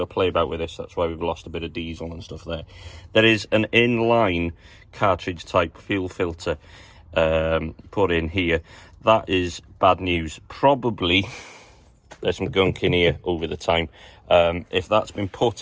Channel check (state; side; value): identical; both; correlation 1.00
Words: play about with this, that's why we've lost a bit of diesel and stuff there. There is an inline cartridge type fuel filter put in here. That is bad news. Probably there's some gunk in here over the time. If that's been